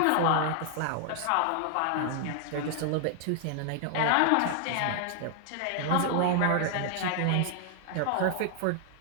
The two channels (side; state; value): both; different; correlation 0.00